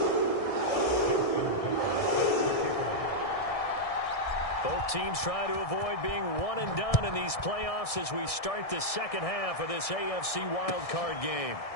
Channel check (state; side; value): late; right; 1.6 ms